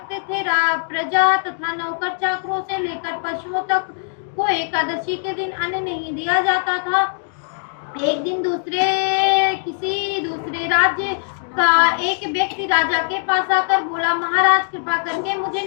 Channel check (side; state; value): right; silent; digital silence